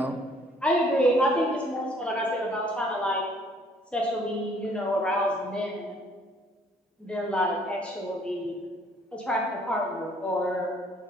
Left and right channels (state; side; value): normal; both; correlation 0.61